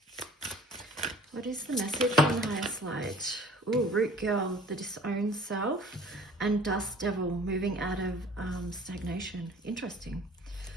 What is the message from the highest light? Ooh, Root Girl, the disowned self, and Dust Devil, moving out of stagnation. Interesting.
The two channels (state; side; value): normal; both; correlation 0.48